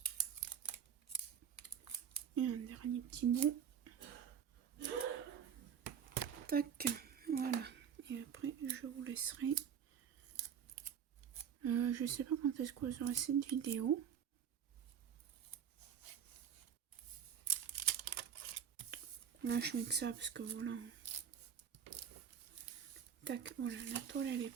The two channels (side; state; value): left; quieter; 8.2 dB